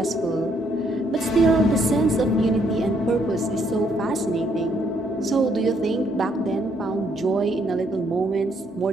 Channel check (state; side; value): normal; both; correlation 0.71